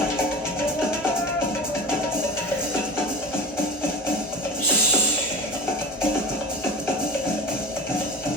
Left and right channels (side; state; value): both; normal; correlation 0.32